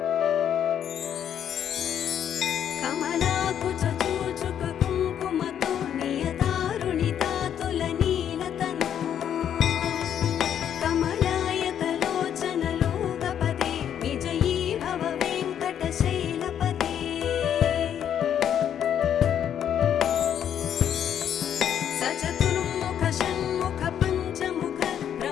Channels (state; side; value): quieter; right; 9.4 dB